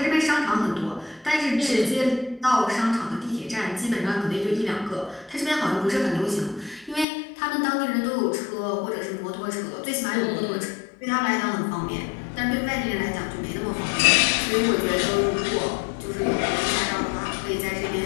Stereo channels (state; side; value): drops out; right; at 7.1 s